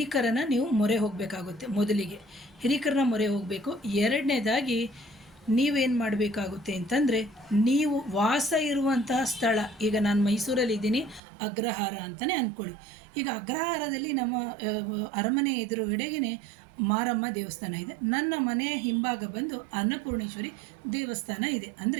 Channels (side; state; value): left; drops out; at 11.2 s